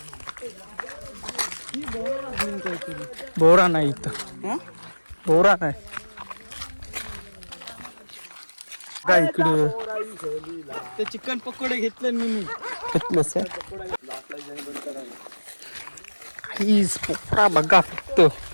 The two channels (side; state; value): both; inverted; correlation -1.00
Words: बोरा नाही इथं, बोरा नाही काय इकडे. ते चिकन पकोडे घेतले मी घेतलंस पोरा बघा, फक्त